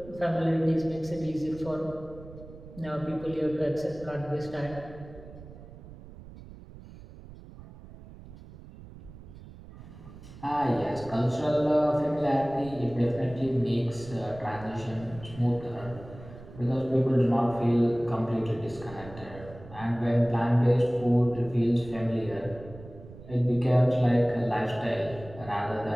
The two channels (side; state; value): right; noise; rumble, 17 dB below the sound